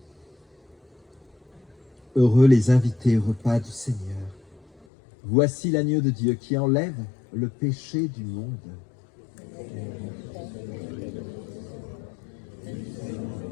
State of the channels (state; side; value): drops out; right; at 4.9 s